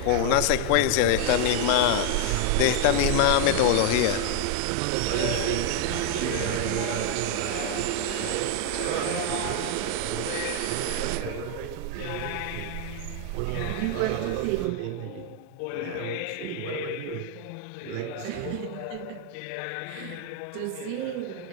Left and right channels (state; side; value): different; both; correlation 0.00